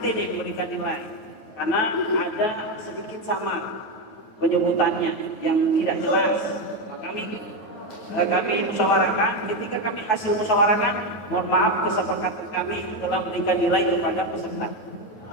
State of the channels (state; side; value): late; right; 9.2 ms